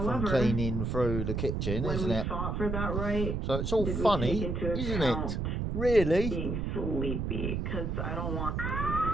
cleaning through the kitchen, isn't it? For that, right? So it's all funny, isn't it? Really? Being sleepy, because I don't want...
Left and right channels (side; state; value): right; noise; rumble, 1 dB below the sound